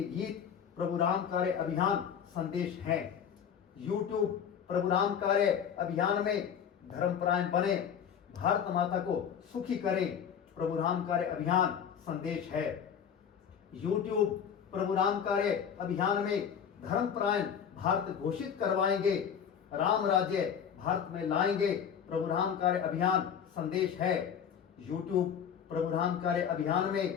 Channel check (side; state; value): right; quieter; 7.9 dB